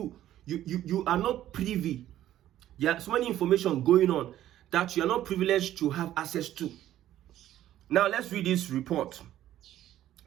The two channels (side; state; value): left; quieter; 12.7 dB